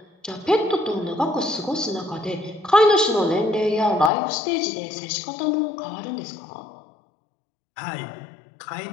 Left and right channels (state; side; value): drops out; right; at 4.1 s